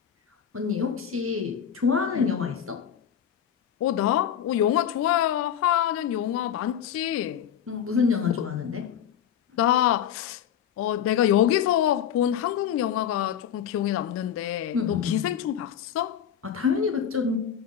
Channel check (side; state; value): right; quieter; 9.1 dB